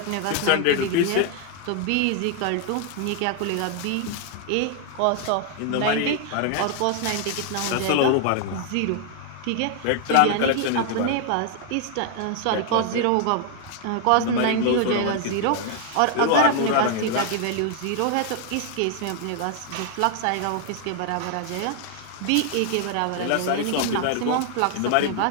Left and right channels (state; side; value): different; both; correlation 0.00